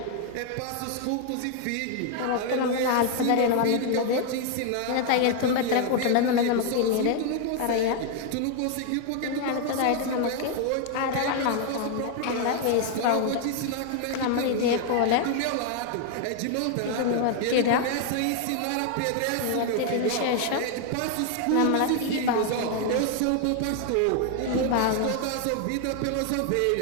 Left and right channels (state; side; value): different; both; correlation 0.00